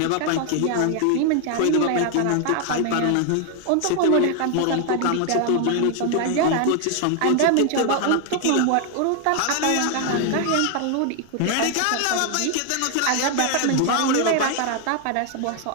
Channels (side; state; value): both; different; correlation 0.00